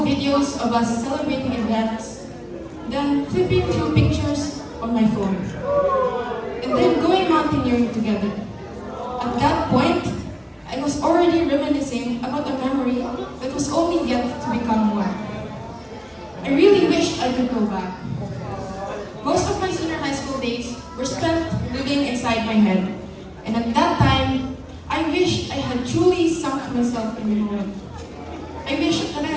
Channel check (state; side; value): identical; both; correlation 1.00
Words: videos of us celebrating events, then flipping through pictures on my phone, and then going mountaineering together. At that point, I was already reminiscing about a memory that was only yet to become one. I really wished I could go back. Most of my senior high school days were spent living inside my head, and at that time, I wished I had truly sunk myself in the moment. I wished that I